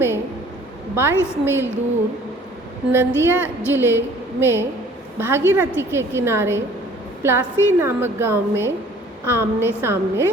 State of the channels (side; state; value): both; normal; correlation 0.53